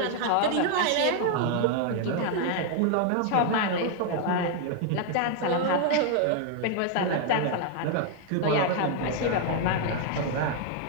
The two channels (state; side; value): different; both; correlation 0.00